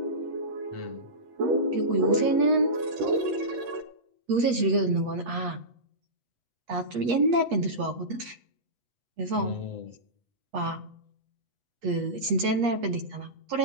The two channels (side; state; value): left; late; 8.3 ms